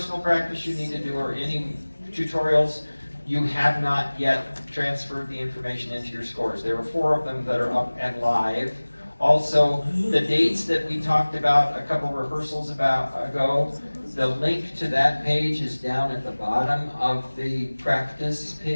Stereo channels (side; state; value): both; inverted; correlation -1.00